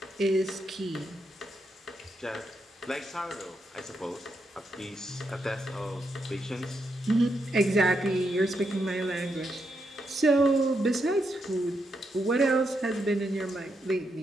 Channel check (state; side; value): normal; both; correlation 0.81